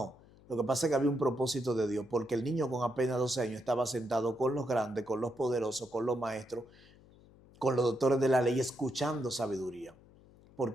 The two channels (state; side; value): noise; left; hum, 25 dB below the sound